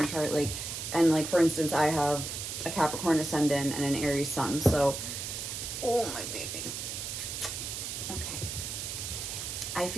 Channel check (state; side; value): noise; right; hiss, 5 dB below the sound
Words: chart, like, and like for instance, I have a Capricorn ascendant and an Aries sun. So, oh my baby. Okay. I